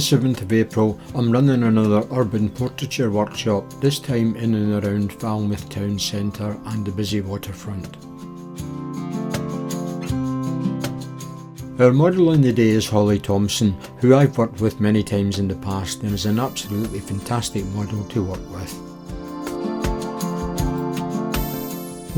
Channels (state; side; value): identical; both; correlation 1.00